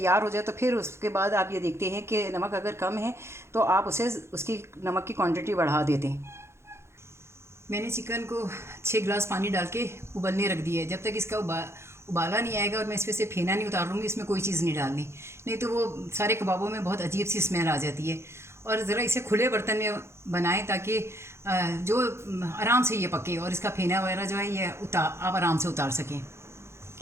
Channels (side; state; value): left; late; 0.13 ms